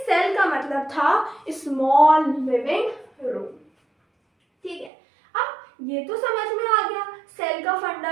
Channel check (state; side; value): drops out; left; at 4.9 s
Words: सेल का मतलब था स्मॉल लिविंग रूम, ठीक है। अब ये तो समझ में आ गया सेल का